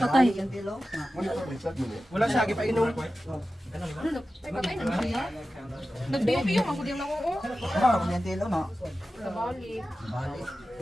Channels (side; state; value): both; normal; correlation 0.94